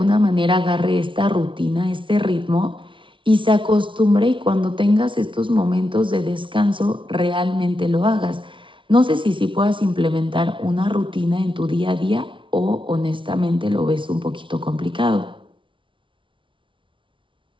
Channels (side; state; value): left; late; 0.25 ms